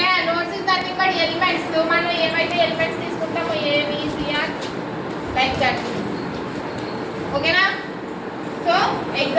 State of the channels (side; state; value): both; identical; correlation 1.00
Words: nodes is nothing but elements. మనం ఏమైతే ఎలిమెంట్స్ తీసుకుంటామో ABCR లైక్ దట్ ఓకేనా. సో